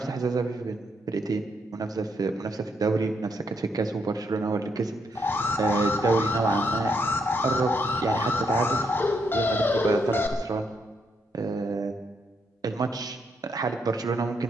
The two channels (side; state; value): both; normal; correlation 0.76